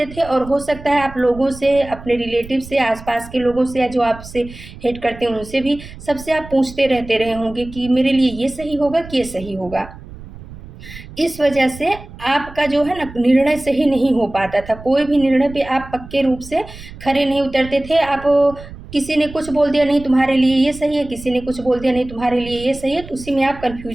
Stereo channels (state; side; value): noise; right; rumble, 16 dB below the sound